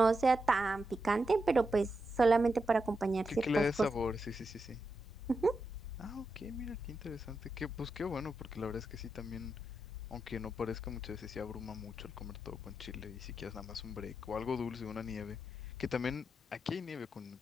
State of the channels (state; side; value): normal; both; correlation 0.86